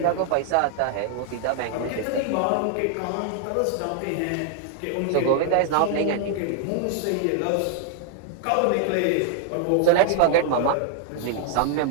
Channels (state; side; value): different; both; correlation 0.00